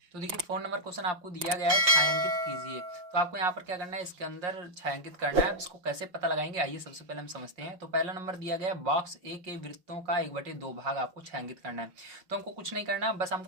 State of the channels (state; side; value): late; left; 5.8 ms